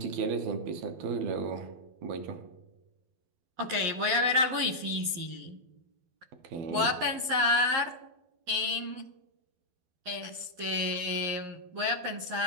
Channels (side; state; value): left; late; 12 ms